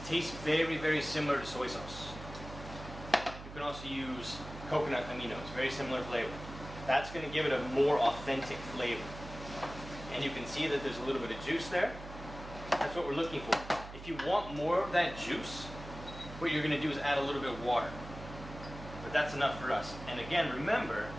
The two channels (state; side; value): noise; right; hum, 13 dB below the sound